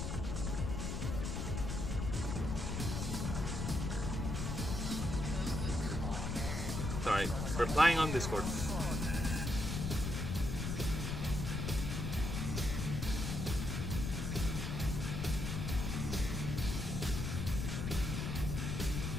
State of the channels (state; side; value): noise; left; rumble, 2 dB below the sound